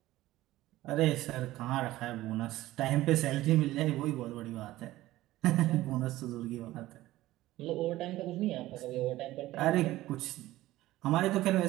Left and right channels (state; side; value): quieter; left; 16.3 dB